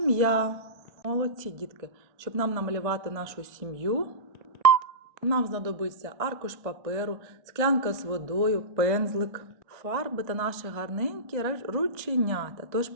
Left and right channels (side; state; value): left; late; 1.6 ms